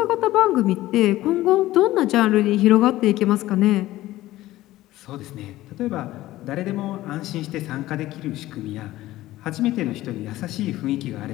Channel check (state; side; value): quieter; right; 16.0 dB